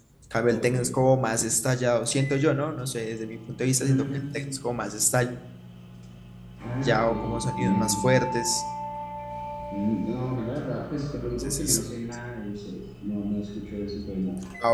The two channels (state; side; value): identical; both; correlation 1.00